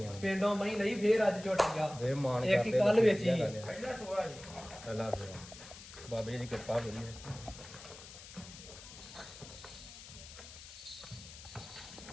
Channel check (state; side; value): noise; left; hiss, 15 dB below the sound